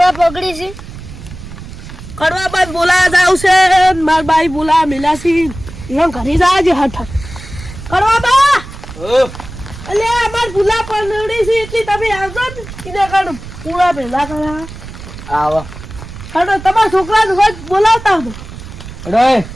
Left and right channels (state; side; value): noise; right; rumble, 13 dB below the sound